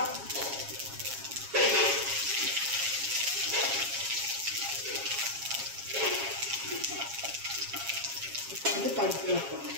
இப்போ வந்து பருப்பு வைப்போம்.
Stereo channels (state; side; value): late; left; 7.3 ms